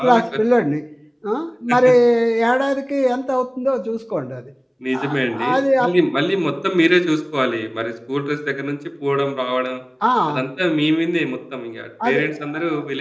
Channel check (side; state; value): both; identical; correlation 1.00